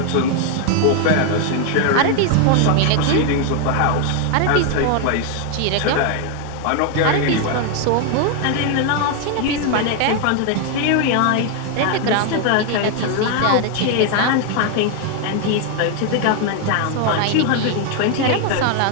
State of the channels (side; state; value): both; different; correlation 0.01